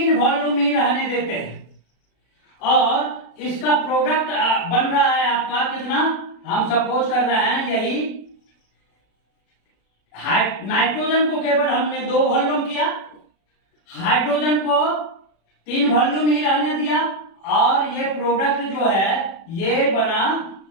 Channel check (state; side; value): late; right; 36 ms